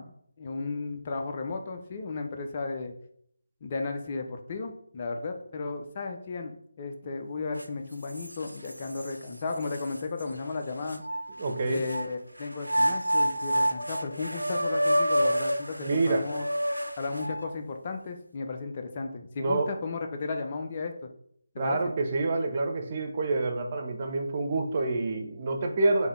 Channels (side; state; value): both; inverted; correlation -0.88